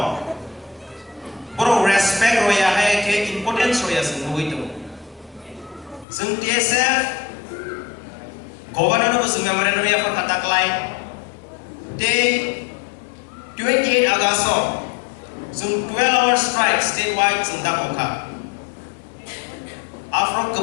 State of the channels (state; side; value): drops out; right; at 6.1 s